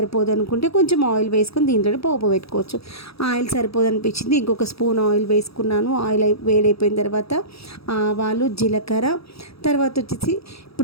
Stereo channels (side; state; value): right; late; 0.77 ms